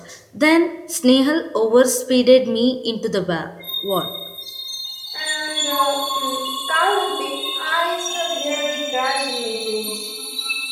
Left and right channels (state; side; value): identical; both; correlation 1.00